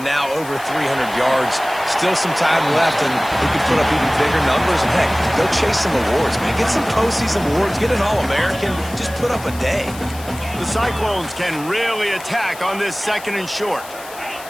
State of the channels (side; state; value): left; noise; hiss, 16 dB below the sound